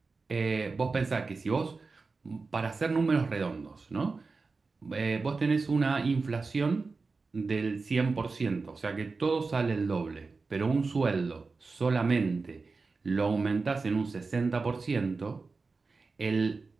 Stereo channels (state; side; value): quieter; left; 4.2 dB